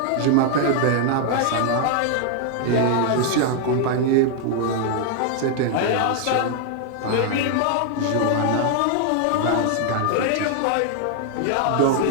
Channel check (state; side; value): different; both; correlation 0.00